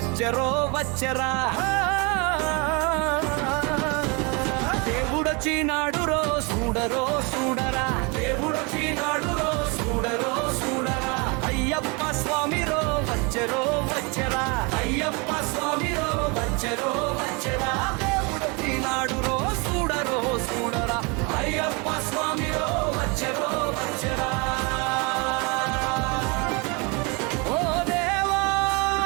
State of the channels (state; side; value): quieter; left; 30.1 dB